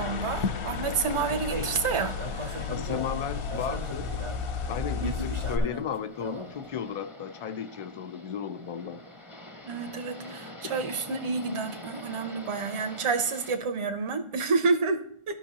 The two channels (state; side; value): late; left; 1.4 ms